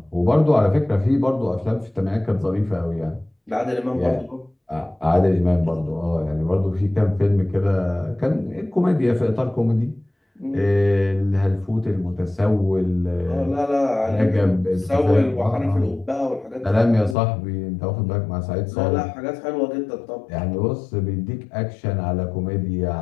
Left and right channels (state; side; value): drops out; right; at 17.2 s